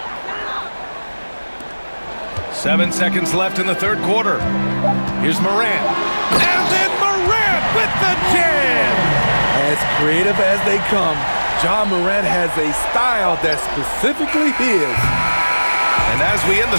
Seven seconds left in the third quarter. Here's Morant. And then Morant with the jam! As creative as they come, Ja Morant has a style that's specifically his. And as we end the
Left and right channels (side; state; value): both; inverted; correlation -1.00